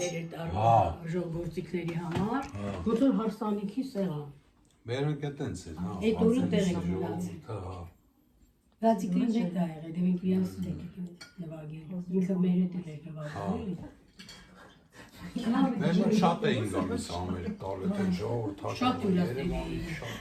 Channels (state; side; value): identical; both; correlation 1.00